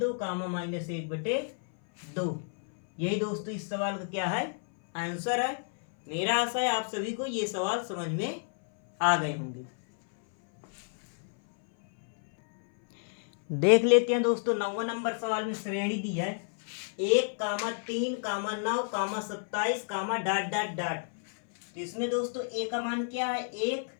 कामा -1/2। यही दोस्तों इस सवाल का क्या है आंसर है। मेरा आशा है आप सभी को ये सवाल समझ में आ गए होंगे। देख लेते हैं दोस्तों 9वां नंबर सवाल में श्रेणी दी है 1, 3, 9, 27, डॉट डॉट डॉट। तो इसमें दोस्तों a का मान क्या है 1,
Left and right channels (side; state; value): right; silent; 58 dB below the other